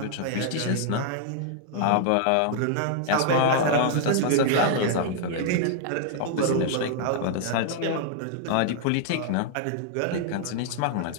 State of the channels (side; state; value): both; different; correlation 0.00